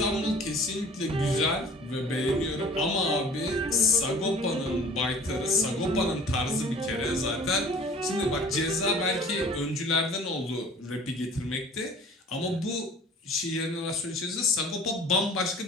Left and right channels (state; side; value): normal; both; correlation 0.47